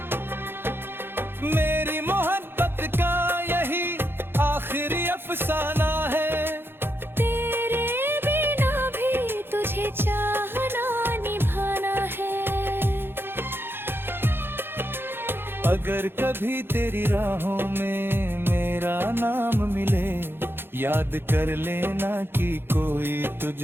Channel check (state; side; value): late; left; 0.10 ms